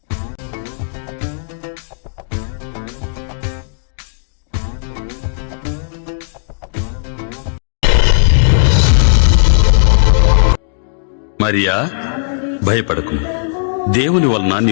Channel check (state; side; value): silent; right; digital silence